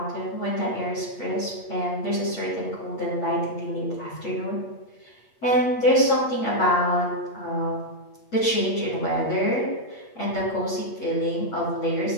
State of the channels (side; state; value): right; late; 8.4 ms